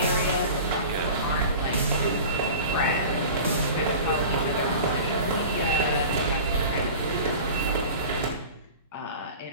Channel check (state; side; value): inverted; both; correlation -0.37